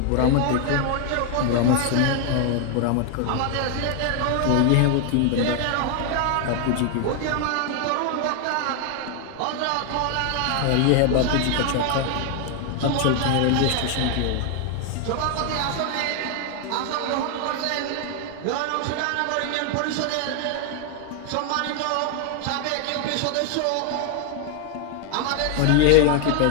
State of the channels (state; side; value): different; both; correlation 0.00